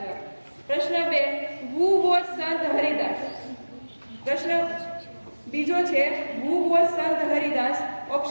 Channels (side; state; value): both; inverted; correlation -1.00